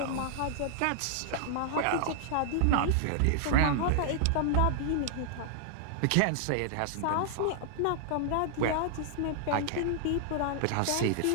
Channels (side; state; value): both; different; correlation -0.01